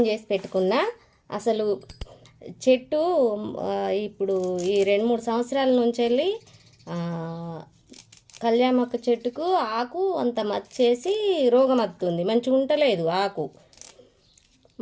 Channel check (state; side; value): identical; both; correlation 1.00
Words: చేసి పెట్టుకున్నా. అసలు చెట్టు ఇప్పుడు ఈ 2-3 సంవత్సరాల నుంచి వెళ్ళి కళ్యామాకు చెట్టుకు ఆకు అంత మచ్చేసి రోగం వస్తుంది, మంచిగా ఉండలేదు ఆకు.